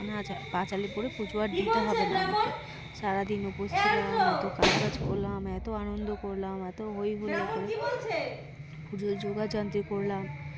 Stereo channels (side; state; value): both; identical; correlation 1.00